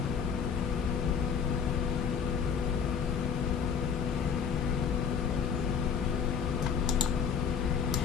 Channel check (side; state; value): right; quieter; 6.8 dB